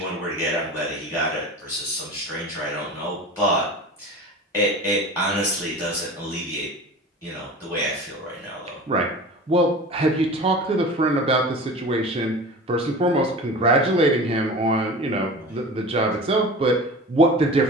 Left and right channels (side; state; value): both; normal; correlation 0.35